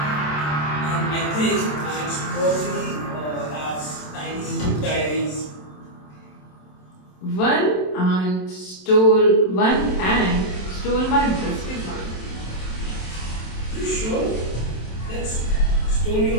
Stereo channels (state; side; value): late; right; 27 ms